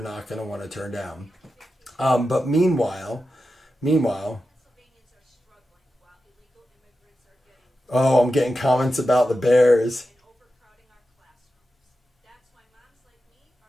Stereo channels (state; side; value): normal; both; correlation 0.91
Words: not going to want to turn down. But meanwhile, oh, I'm getting comments about the Bears.